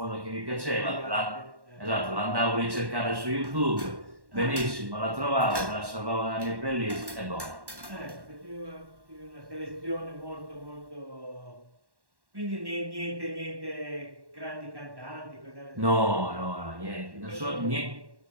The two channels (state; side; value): late; left; 1.1 ms